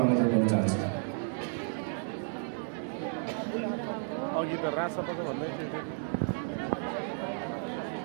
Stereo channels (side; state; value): left; silent; digital silence